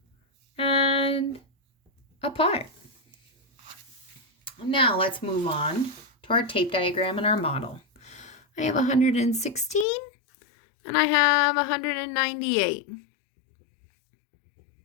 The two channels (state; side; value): drops out; right; at 9.9 s